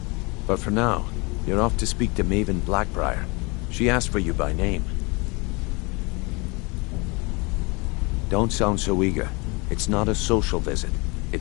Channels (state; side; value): quieter; right; 27.9 dB